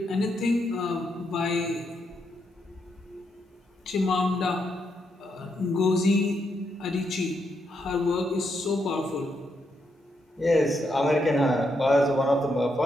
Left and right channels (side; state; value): both; normal; correlation 0.80